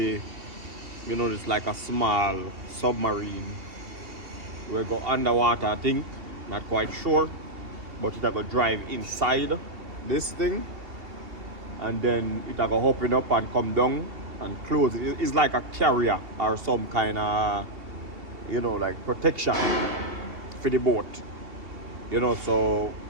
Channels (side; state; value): left; late; 2.7 ms